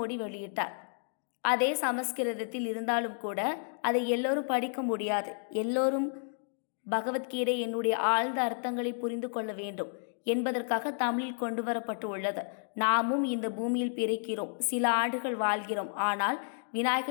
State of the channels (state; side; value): silent; right; digital silence